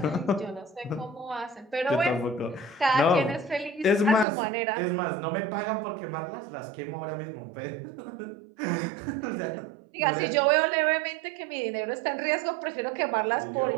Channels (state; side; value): drops out; left; at 4.2 s